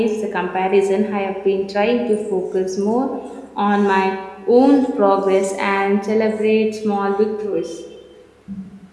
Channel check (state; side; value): identical; both; correlation 1.00